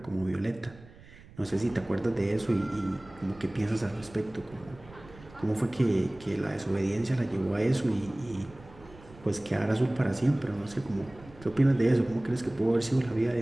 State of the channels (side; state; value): right; noise; rumble, 21 dB below the sound